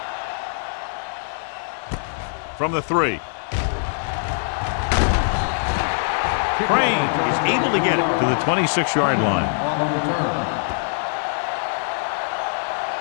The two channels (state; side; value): silent; right; digital silence